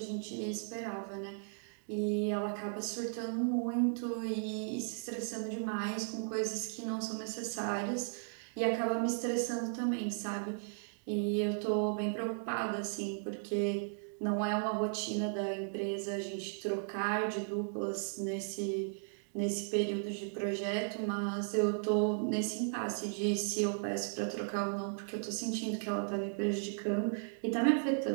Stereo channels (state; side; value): silent; left; digital silence